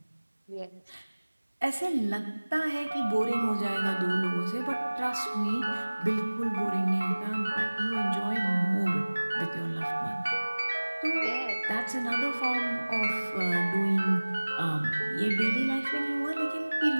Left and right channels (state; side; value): inverted; both; correlation -1.00